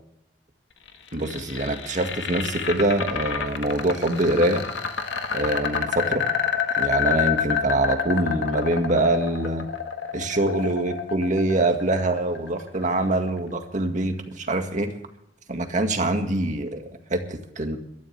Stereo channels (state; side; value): normal; both; correlation 0.23